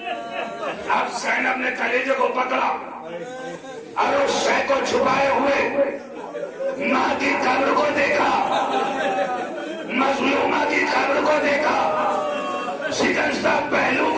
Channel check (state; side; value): identical; both; correlation 1.00